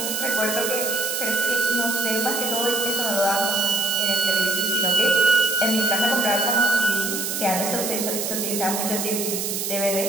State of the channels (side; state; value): right; noise; hiss, 2 dB below the sound